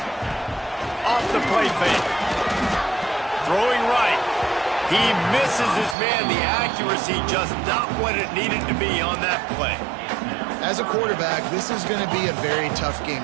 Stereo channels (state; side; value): drops out; left; at 6.0 s